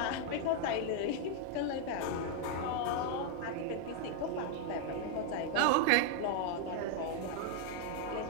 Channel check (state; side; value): different; both; correlation 0.00